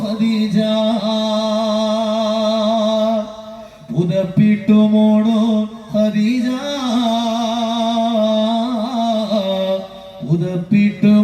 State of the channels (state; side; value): identical; both; correlation 1.00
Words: ഖദീജ, പുതപ്പിട്ട് മൂടോ ഖദീജ, പുതപ്പിട്ട്